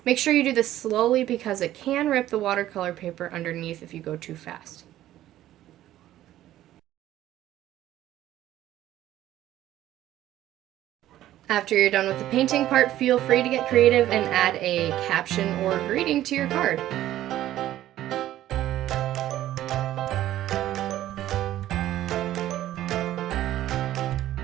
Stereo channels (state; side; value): quieter; left; 13.5 dB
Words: Make sure you do this slowly because it can rip the watercolor paper underneath if you go too fast. After you're done with the painting part, feel free to get creative and add a caption or greeting to your card.